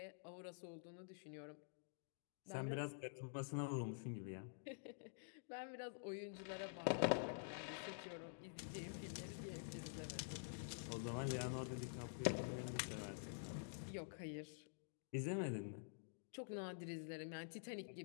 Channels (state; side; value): silent; right; digital silence